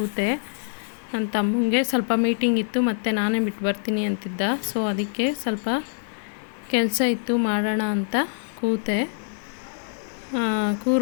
ನನ್ನ ತಮ್ಮಂಗೆ ಸ್ವಲ್ಪ ಮೀಟಿಂಗ್ ಇತ್ತು ಮತ್ತು ನಾನೇ ಬಿಟ್ಟು ಬರ್ತೀನಿ ಅಂತಿದ್ದ. ಸೊ ಅದಕ್ಕೆ ಸ್ವಲ್ಪ ಕೆಲಸ ಇತ್ತು ಮಾಡೋಣ ಅಂತ ಕೂತೆ.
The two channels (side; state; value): right; silent; digital silence